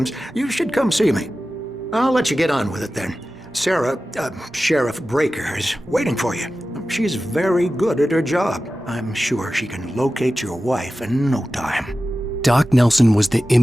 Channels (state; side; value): normal; both; correlation 0.94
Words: you should come see me. I'll let you get on with it then. Sarah, Sheriff Breaker, is waiting for you. She's very good at her job. I'm sure she can locate your wife in no time. Doc Nelson was the